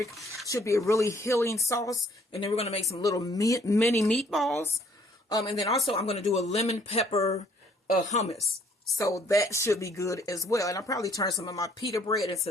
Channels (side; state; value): both; normal; correlation 0.62